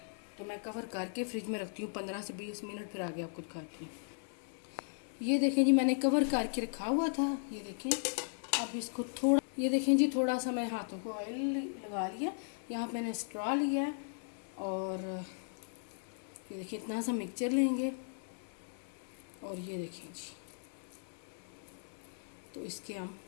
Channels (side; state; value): right; silent; digital silence